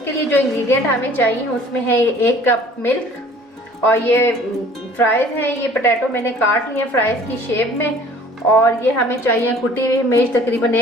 लिए जो इंग्रेडिएंट हमें चाहिए उसमें है 1 कप मिल्क और ये फ्राइज हैं, ये पोटैटो मैंने काट लिए फ्राइज की शेप में। और ये हमें चाहिए कुटी हुई मिर्च तकरीबन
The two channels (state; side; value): normal; both; correlation 0.51